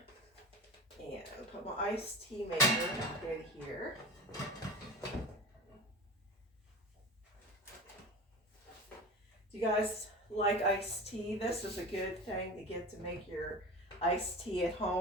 And put my iced tea maker in here. Do you guys like iced tea? This is a good thing to get to make your iced tea at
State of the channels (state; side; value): normal; both; correlation 0.31